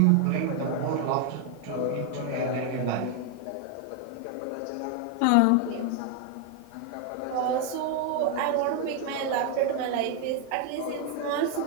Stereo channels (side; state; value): both; different; correlation 0.01